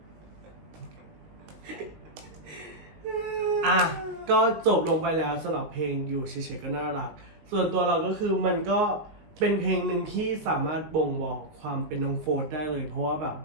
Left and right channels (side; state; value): left; late; 19 ms